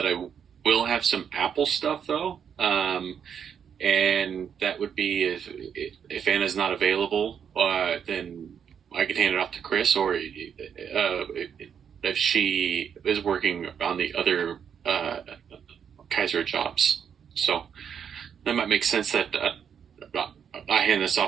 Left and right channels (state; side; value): quieter; left; 7.8 dB